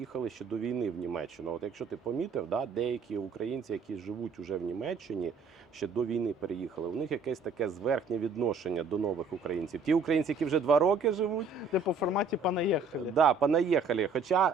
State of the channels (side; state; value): left; quieter; 4.4 dB